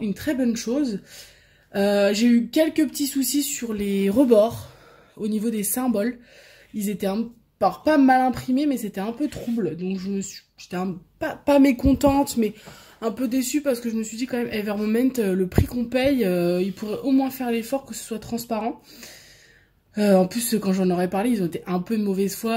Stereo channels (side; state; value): both; identical; correlation 1.00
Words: une très bonne chose. J'ai eu quelques petits soucis sur les rebords au niveau des symboles, ils étaient pas mal imprimés mais c'était un peu trouble, donc j'étais pas mécontente mais un peu déçue parce que je me suis dit quand même Ever Moment, le prix qu'on paye, ils pourraient au moins faire l'effort que ce soit transparent. En plus, quand j'en aurais parlé, ils ont été un peu de mauvaise